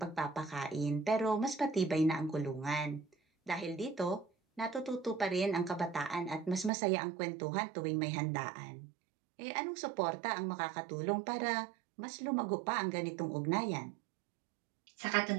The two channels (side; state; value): left; drops out; at 6.7 s